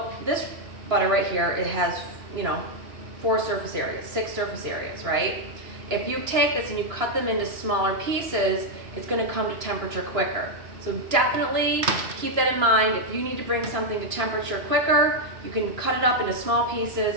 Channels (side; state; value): left; late; 2.9 ms